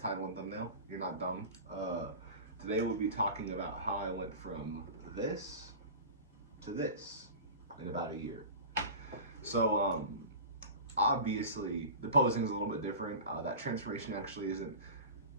title and thumbnail. You're not dumb. Today we'll be talking about how I went from this to this in about a year. So obviously the posing is a little bit different. That transformation actually isn't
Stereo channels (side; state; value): both; inverted; correlation -0.33